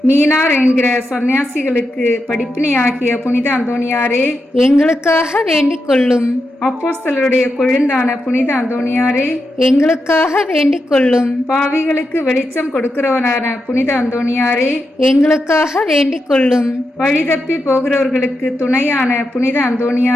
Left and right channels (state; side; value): normal; both; correlation 0.86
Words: மீனார் என்கிற சன்னியாசிகளுக்கு படிப்பினையாகிய புனித அந்தோனியாரே, எங்களுக்காக வேண்டிக் கொள்ளும். அப்போஸ்தலருடைய கொழுந்தான புனித அந்தோனியாரே, எங்களுக்காக வேண்டிக் கொள்ளும். பாவிகளுக்கு வெளிச்சம் கொடுக்கிறவனான புனித அந்தோனியாரே, எங்களுக்காக வேண்டிக் கொள்ளும். வழிதப்பி போகிறவர்களுக்கு துணையான புனித